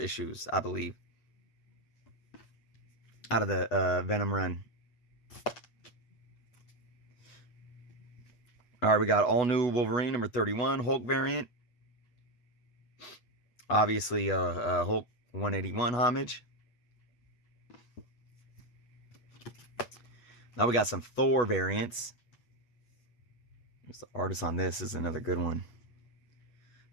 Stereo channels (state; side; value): late; right; 8.2 ms